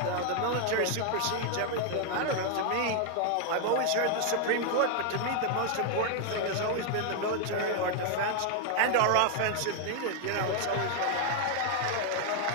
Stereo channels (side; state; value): both; different; correlation 0.00